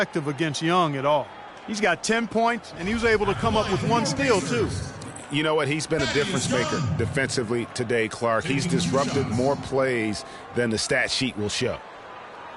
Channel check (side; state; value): both; identical; correlation 1.00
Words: against Young at all. He's got 10 points, and he was able to come up with 1 steal, too. You know what? He's been a difference maker defensively today, Clark. He's disrupted more plays than the stat sheet will show.